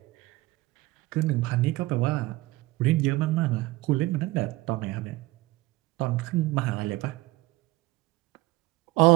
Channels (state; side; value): quieter; left; 19.6 dB